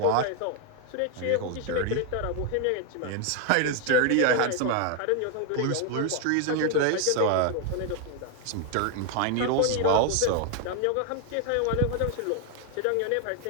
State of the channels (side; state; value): both; different; correlation 0.01